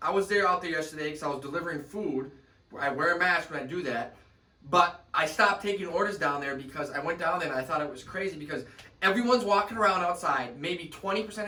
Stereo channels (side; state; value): both; identical; correlation 1.00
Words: I was out there yesterday because I was delivering food. I wear a mask when I do that. But I stopped taking orders down there because I went down there and I thought it was crazy because everyone's walking around outside. Maybe